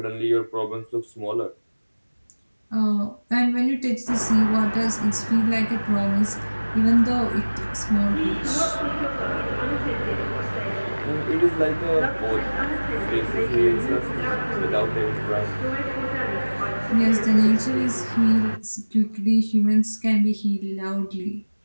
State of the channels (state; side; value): inverted; both; correlation -1.00